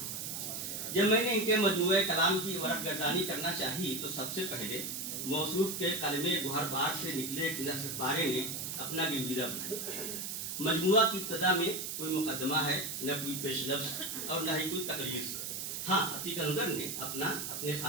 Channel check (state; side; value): noise; right; hiss, 4 dB below the sound